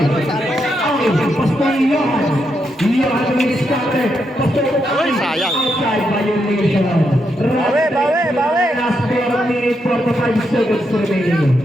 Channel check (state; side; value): normal; both; correlation 0.81